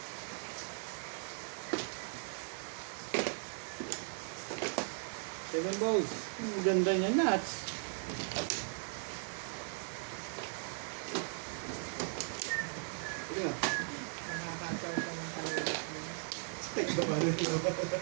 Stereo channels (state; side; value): silent; left; 52 dB below the other